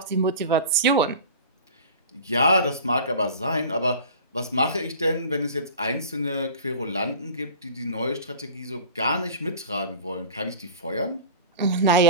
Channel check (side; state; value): both; inverted; correlation -0.39